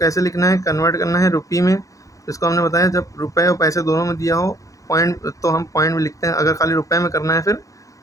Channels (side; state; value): right; late; 0.16 ms